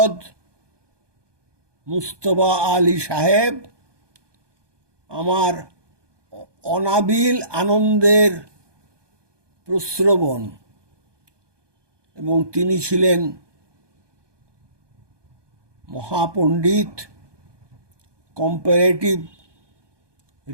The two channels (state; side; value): late; left; 1.2 ms